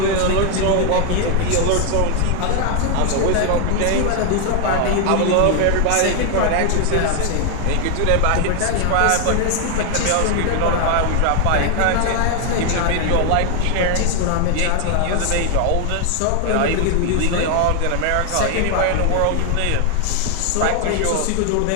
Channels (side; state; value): both; different; correlation 0.00